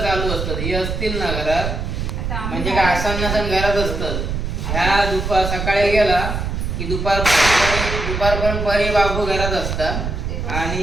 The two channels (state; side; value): noise; right; rumble, 3 dB below the sound